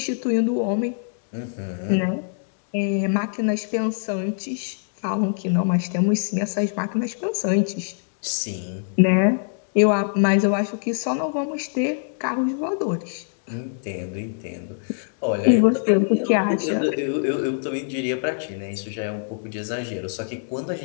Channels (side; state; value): right; silent; digital silence